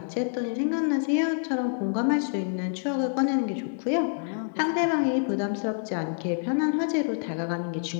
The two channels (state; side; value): silent; right; digital silence